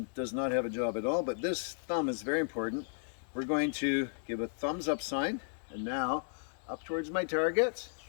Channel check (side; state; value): right; silent; digital silence